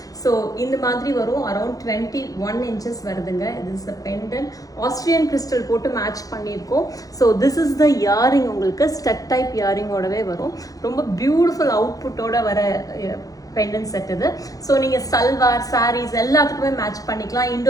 ஸோ இந்த மாதிரி வரும். அரௌண்ட் 21 inches வருதுங்க. இது is the pendant. Austrian crystal போட்டு மேட்ச் பண்ணியிருக்கோம். So this is the earring. உங்களுக்கு ஸ்டட் டைப் இயரிங்கோடவே வரும். ரொம்ப பியூட்டிஃபுல் அவுட்புட்டோட வர பெண்டன்ட் செட் இது. ஸோ நீங்கள் சல்வார் சாரீஸ் எல்லாத்துக்குமே மேட்ச் பண்ணிக்கலாம்.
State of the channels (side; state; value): right; late; 0.17 ms